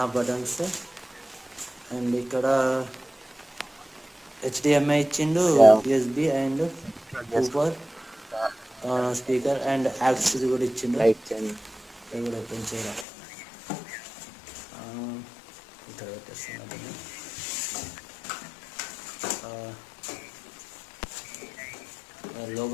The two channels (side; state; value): right; drops out; at 13.1 s